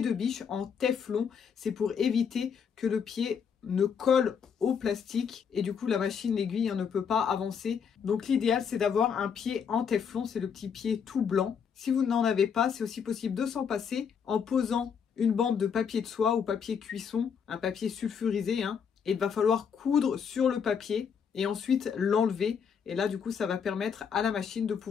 de biche en téflon. C'est pour éviter que le pied ne colle au plastique et du coup la machine, l'aiguille ne peut pas avancer. Donc l'idéal c'est d'avoir un pied en téflon, c'est le petit pied tout blanc. Si vous n'en avez pas, c'est aussi possible de s'en passer en posant une bande de papier de soie ou papier cuisson, un papier sulfurisé, et il va falloir coudre sur le papier et ensuite l'enlever. Et là, du coup, ça va permettre à la machine de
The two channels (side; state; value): right; quieter; 6.9 dB